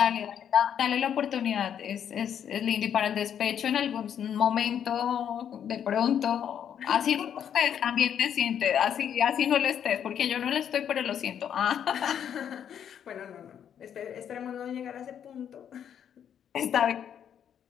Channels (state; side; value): quieter; right; 8.9 dB